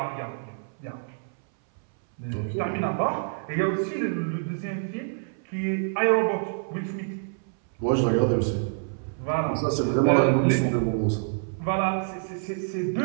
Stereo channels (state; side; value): silent; left; 60 dB below the other